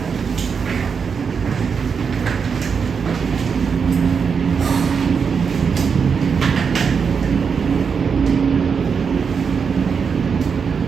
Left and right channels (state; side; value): quieter; left; 6.1 dB